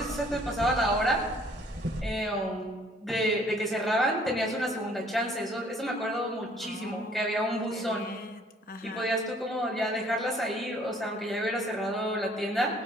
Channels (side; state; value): both; normal; correlation 0.59